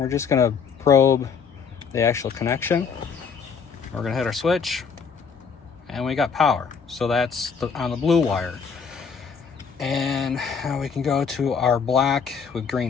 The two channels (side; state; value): right; quieter; 6.1 dB